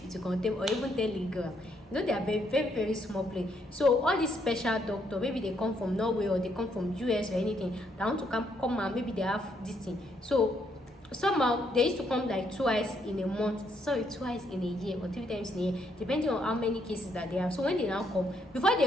contain or even Telegram. They are very, very, very small place. So all these special doctor, maybe they come from Norway or they come from US or anything, they want to come and maybe they have this thing. So somehow they used to come like twice in a month, twice in a year or 3 times in a year, depending on how many cases that they have. So when they now come, before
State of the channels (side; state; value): both; normal; correlation 0.73